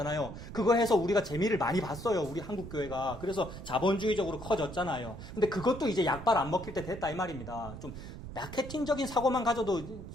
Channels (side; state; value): right; noise; rumble, 11 dB below the sound